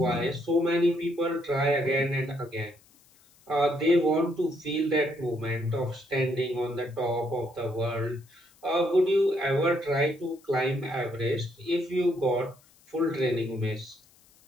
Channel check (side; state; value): left; noise; hiss, 30 dB below the sound